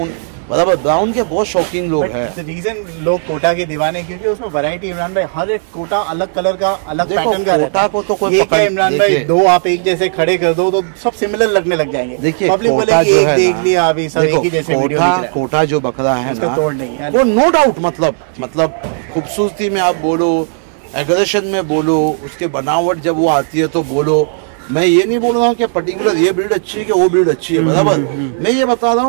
बराबर, ब्राउन के बहुत शौकीन लोग हैं। रीजन लोग कोटा के दीवाने क्योंकि उसमें वैरायटी इमरान भाई, हर एक कोटा अलग कलर का, अलग पैटर्न का रहता है। को तो कोई क्या इमरान भाई, दो आप एक जैसे खड़े कर दो तो सब सिमिलर लगने लग जाएंगे। देखिए पब्लिक बोलेगी एक देख लिया अभी सब एक ही जैसे वीडियो दिख रहा है। कोटा जो बकरा है ना, तोड़ नहीं है वो नो डाउट, मतलब खूबसूरती में आप बोलो, एग्रेशन में बोलो, उसके बनावट जब वो आती है तो बोलो, मैं ये नहीं बोल रहा हूँ कि पर्टिकुलर ये ब्रीड अच्छी है कि वो ब्रीड अच्छी है, बराबर, मैं ये बता रहा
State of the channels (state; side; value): silent; left; digital silence